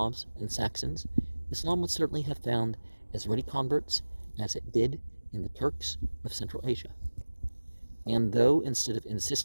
and Saxons, Islam would certainly have found as ready converts as it did in the Turks of Central Asia. And though instead of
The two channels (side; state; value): both; inverted; correlation -1.00